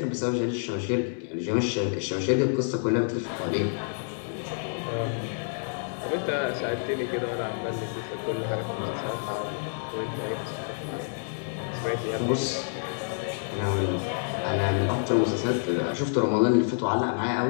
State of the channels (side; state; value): right; silent; digital silence